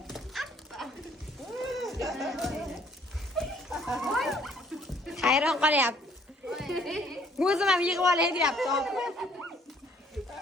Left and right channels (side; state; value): both; normal; correlation 0.61